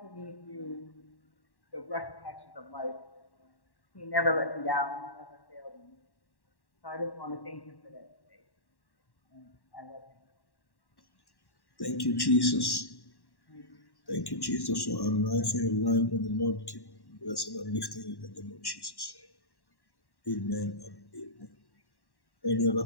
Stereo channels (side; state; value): right; late; 1.1 ms